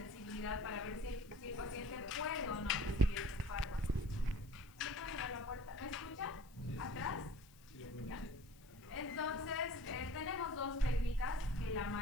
para ver si el paciente puede o no recibir este fármaco. ¿Me pueden dar la puerta? ¿Me escuchan? ¿Atrás? Ya. Entonces, tenemos dos técnicas que la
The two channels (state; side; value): noise; left; hiss, 25 dB below the sound